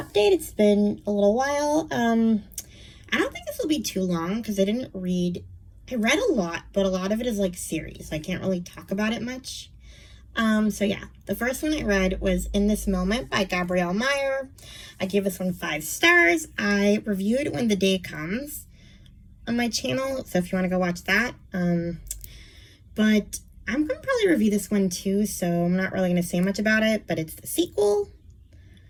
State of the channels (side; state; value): both; identical; correlation 1.00